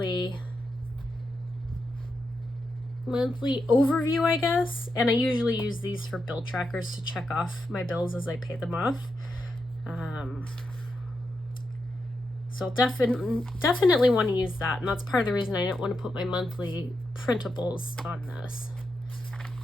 overview, I guess. And I usually use these for bill trackers to check off my bills as I pay them off. So definitely want to use that. And that's part of the reason I didn't want to put my monthly printables on this,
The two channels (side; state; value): both; normal; correlation 0.85